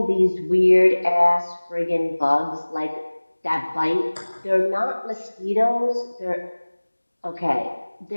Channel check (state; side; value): inverted; both; correlation -1.00